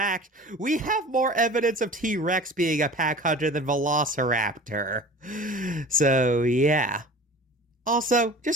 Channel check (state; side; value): normal; both; correlation 0.40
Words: we have more evidence of T-Rex being a pack hunter than Velociraptor. So, yeah. Also,